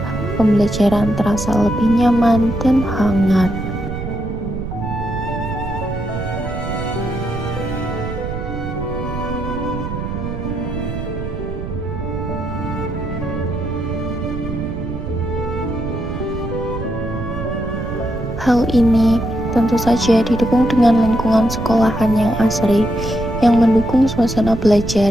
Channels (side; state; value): right; noise; rumble, 6 dB below the sound